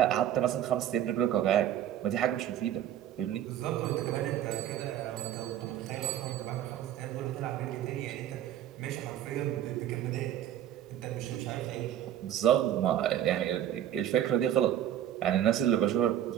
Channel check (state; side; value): quieter; left; 11.3 dB